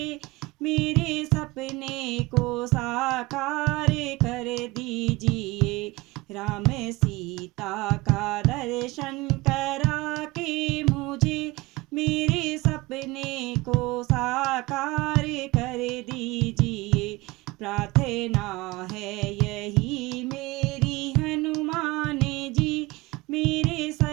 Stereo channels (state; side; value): quieter; left; 22.1 dB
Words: मेरे सपने को साकार कर दीजिए। राम सीता का दर्शन करा के मुझे मेरे सपने को साकार कर दीजिए। प्रार्थना है यही मेरी हनुमान जी, मेरे